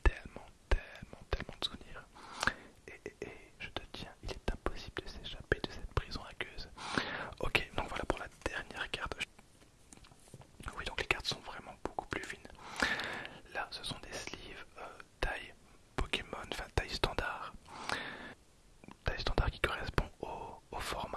tellement de souvenirs. Et je te tiens, il est impossible de s'échapper de cette prison aqueuse. Ok, donc voilà pour la dernière carte. Oui, donc les cartes sont vraiment beaucoup plus fines. Là, ce sont des sleeves taille Pokémon, enfin taille standard. Taille standard qui correspond au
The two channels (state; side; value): identical; both; correlation 1.00